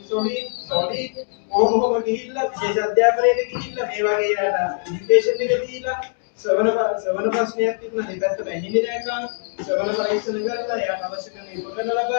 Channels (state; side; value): silent; right; 62 dB below the other